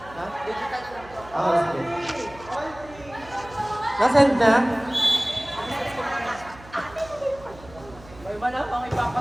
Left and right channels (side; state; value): right; noise; hum, 20 dB below the sound